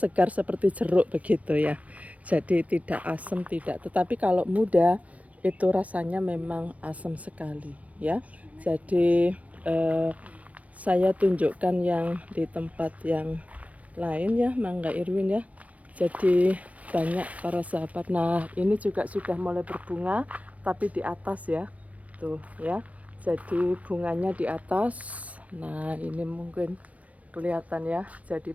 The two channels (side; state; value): left; late; 0.067 ms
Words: seperti jeruk begitu ya. Jadi tidak asam, tidak. Tetapi kalau muda itu rasanya memang asam sekali ya. Jadi saya tunjukkan yang di tempat yang lain ya, mangga Irwin ya. Jadi banyak para sahabat. Nah, ini juga sudah mulai berbunga tapi di atas ya. Tuh ya. Jadi bunganya di atas. Nah, ini mungkin kelihatan ya. Jadi